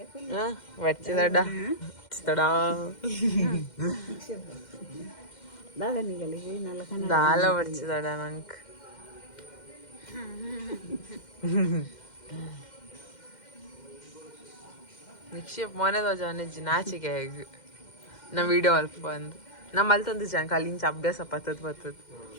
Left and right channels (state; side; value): late; right; 2.1 ms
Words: వచ్చిదడా దాల వచ్చిదడా ನಂಗೆ ನಿಕ್ಷೇಪ್ ಮೊನೆದ ಜಾನೆಜ್ಜಿ ನಾಚಿಕೆ ಹೇಗೆ ನಾ ವಿಡಿಯೋ ಅಲ್ಪ ಬಂದು ನಮ್ಮ ಅಲ್ಲಿ ತಂದು ಜಾಂಕ ಅಲ್ಲಿಂಚ ಅಭ್ಯಾಸ ಪತ್ತದ